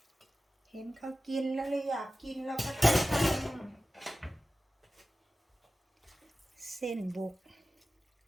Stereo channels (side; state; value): both; normal; correlation 0.95